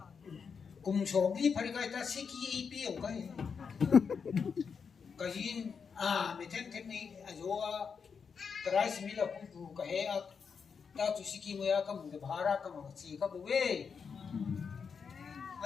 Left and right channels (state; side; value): quieter; right; 6.0 dB